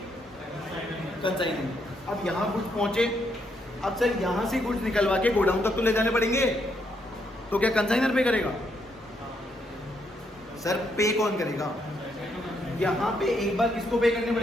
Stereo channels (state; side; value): normal; both; correlation 0.76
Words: कंसाइनर. अब यहाँ गुड्स पहुंचे, अब सर यहाँ से गुड्स निकलवा के गोडाउन तक तो ले जाने पड़ेंगे, तो क्या कंसाइनर पे करेगा? सर पे कौन करेगा? यहाँ पे एक बार किसको पे करने